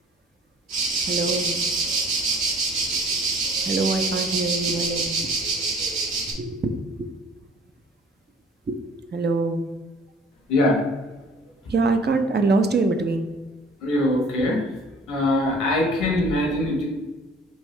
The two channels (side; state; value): both; normal; correlation 0.52